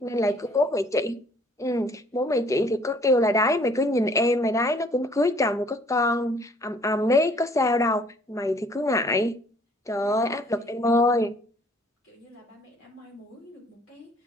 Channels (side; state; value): both; normal; correlation 0.58